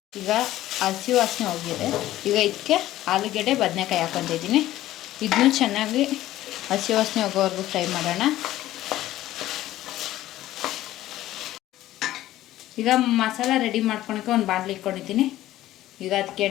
ಈಗ ಹಸಿ ವಾಸನೆ ಹೋಗಿದೆ. ಈಗ ಇದಕ್ಕೆ ಆಲೂಗಡ್ಡೆ, ಬದನೆಕಾಯಿ ಹಾಕ್ಕೊತಿದ್ದೀನಿ. ಇದನ್ನು ಚೆನ್ನಾಗಿ ಹಸಿ ವಾಸನೆ ಹೋಗೋವರೆಗೂ ಫ್ರೈ ಮಾಡೋಣ. ಈಗ ಮಸಾಲ ರೆಡಿ ಮಾಡ್ಕೊಳಕ್ಕೆ ಒಂದು ಬಾಣಲಿ ಇಟ್ಕೊಂಡಿದ್ದೀನಿ. ಈಗ ಅದಕ್ಕೆ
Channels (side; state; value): right; quieter; 14.6 dB